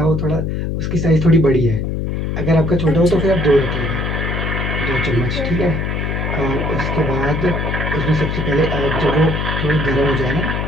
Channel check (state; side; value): noise; left; hum, 1 dB below the sound